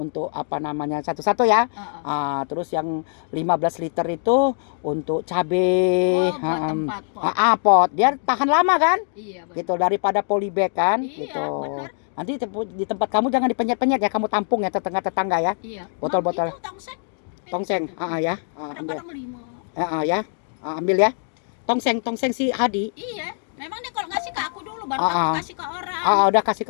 untuk apa namanya, satu-satu ya. Terus yang 15 liter itu untuk cabai. Oh, buat tempat pot. Pot. Dia tahan lama kan? Iya, benar. Gitu, daripada polybag kan? Iya, Gitu. benar. Nanti di tempat kamu jangan dipenyet-penyet ya, kamu tampung ya tetangga-tetangga ya. Iya. Botol-botol. Itu tongseng. Tongseng, ya. Ambil. Kadang-kadang 5. Ya. Ambil ya. Tongseng si Hadi. Iya. Memang dia kalau ngasih ke aku dulu baru Ah, aku ah. kasih ke orang. Udah kasih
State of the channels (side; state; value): right; silent; digital silence